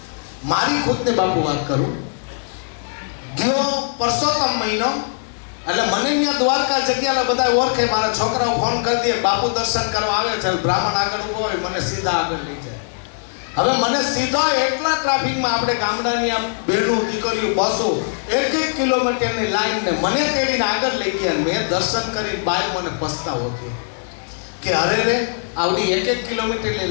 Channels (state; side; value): silent; right; 60 dB below the other